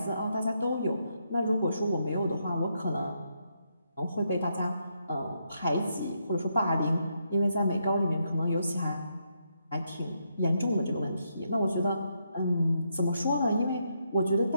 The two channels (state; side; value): inverted; both; correlation -0.79